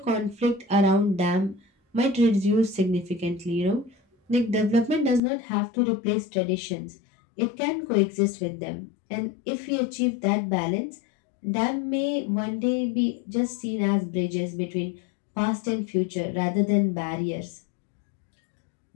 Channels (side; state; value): right; drops out; at 5.2 s